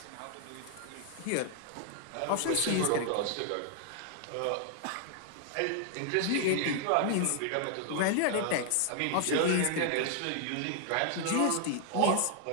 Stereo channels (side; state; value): both; different; correlation 0.00